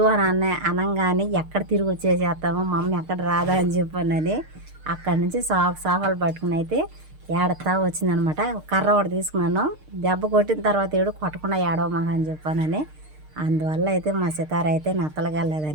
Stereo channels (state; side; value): late; left; 6.5 ms